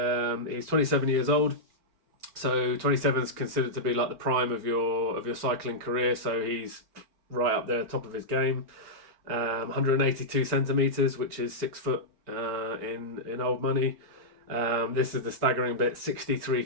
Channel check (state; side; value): late; left; 4.4 ms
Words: he's 27 years old. So 27 is considered to be like the prime of your cycling career. So he's right up there, top of his game. 182 centimeters, which is 6 foot in old money. This is the staggering bit: 63